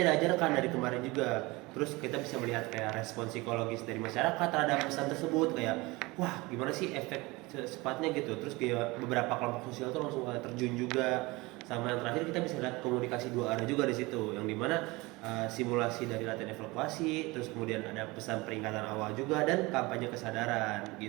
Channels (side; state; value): left; quieter; 23.1 dB